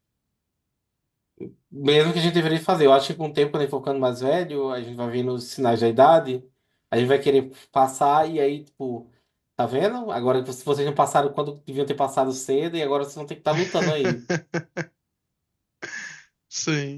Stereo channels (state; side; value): identical; both; correlation 1.00